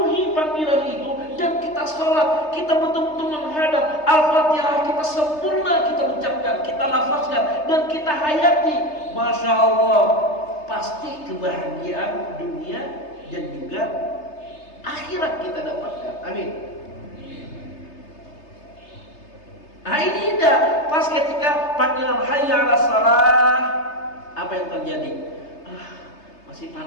panggilan itu, dan kita sholat, kita betul-betul menghadap Al-Fatihah, kita sempurna, kita ucapkan, kita lafazkan, dan kita hayati. Masya Allah, pasti kebahagiaan dunia dan juga akhirat kita dapatkan. Amin. Nah ini indah. Pas ketika panggilan hayya 'alas shalah, apa yang terjadi? Masih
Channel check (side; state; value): right; late; 3.3 ms